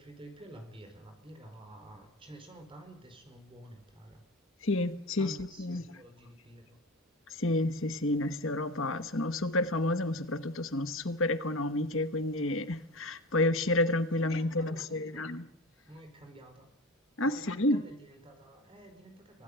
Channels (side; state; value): both; normal; correlation 0.30